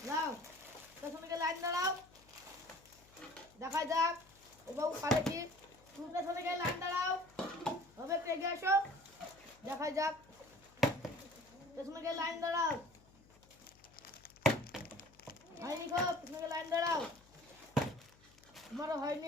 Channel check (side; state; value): left; noise; hum, 26 dB below the sound